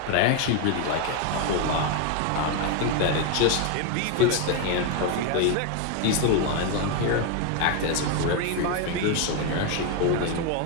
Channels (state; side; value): different; both; correlation 0.01